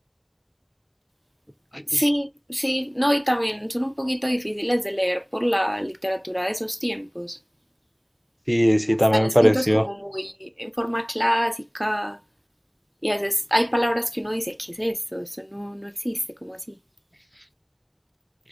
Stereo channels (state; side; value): identical; both; correlation 1.00